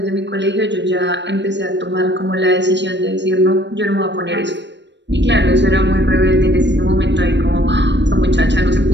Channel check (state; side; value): late; left; 0.52 ms